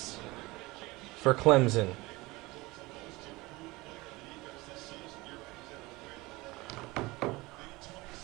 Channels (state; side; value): quieter; left; 21.8 dB